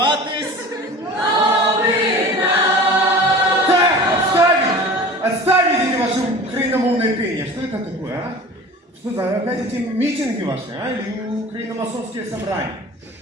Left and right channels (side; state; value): both; normal; correlation 0.40